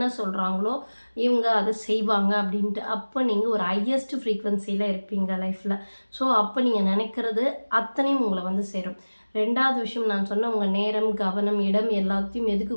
சொல்றாங்களோ, இவங்க அத செய்வாங்க அப்படின்ட்டு. அப்ப நீங்க ஒரு ஹையஸ்ட் ஃப்ரீக்வன்சில இருப்பீங்க லைஃப்ல. ஸோ, அப்ப நீங்க நெனைக்கிறது அத்தனையும் உங்கள வந்து சேரும். 2வது விஷயம் நான் சொன்ன உங்க நேரம், கவனம், இடம் எல்லாத்தையும் எதுக்கு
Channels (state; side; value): inverted; both; correlation -1.00